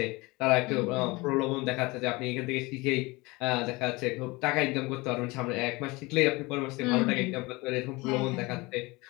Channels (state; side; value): quieter; right; 23.6 dB